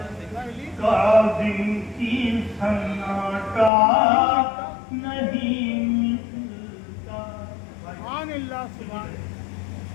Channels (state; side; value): drops out; right; at 3.7 s